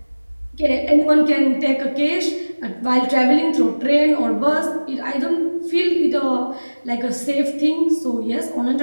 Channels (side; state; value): both; inverted; correlation -1.00